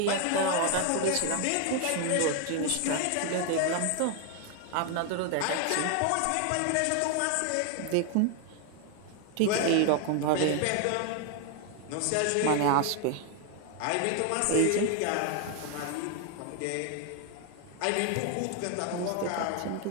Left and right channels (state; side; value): different; both; correlation 0.01